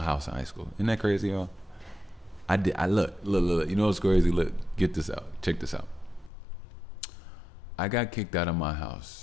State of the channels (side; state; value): right; drops out; at 6.3 s